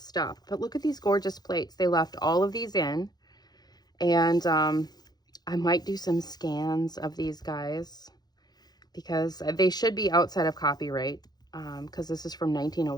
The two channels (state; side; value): late; right; 0.19 ms